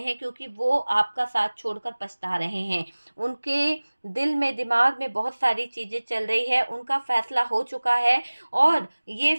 क्योंकि वो आपका साथ छोड़कर पछता रहे हैं। उनके दिल में, दिमाग में बहुत सारी चीज़ें चल रही है, उनका फ़ैसला हो चुका है और ये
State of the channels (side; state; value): both; inverted; correlation -1.00